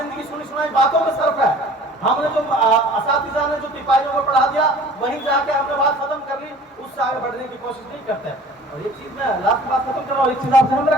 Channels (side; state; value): both; normal; correlation 0.47